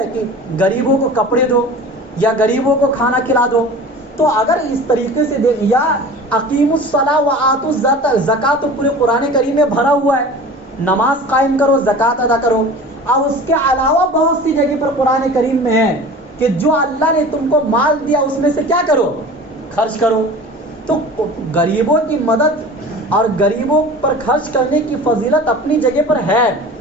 کہ غریبوں کو کپڑے دو یا غریبوں کو کھانا کھلا دو. تو اگر اس طریقے سے دیکھ، یا اقیم الصلاۃ و آتوا الزکاۃ، زکات تو پورے قرآن کریم میں بھرا ہوا ہے، نماز قائم کرو، زکات ادا کرو. اور اس کے علاوہ بہت سی جگہ پر قرآن کریم میں ہے کہ جو اللہ نے تم کو مال دیا اس میں سے کیا کرو، خرچ کرو. تو غریبوں کی مدد اور غریبوں پر خرچ کرنے کی فضیلت اپنی جگہ پر ہے،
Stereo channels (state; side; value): normal; both; correlation 0.38